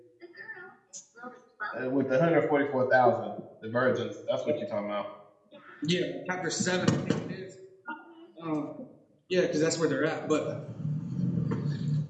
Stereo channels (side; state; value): both; identical; correlation 1.00